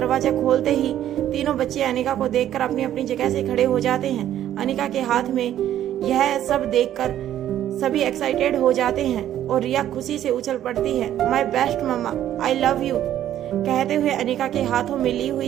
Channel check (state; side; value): quieter; left; 11.7 dB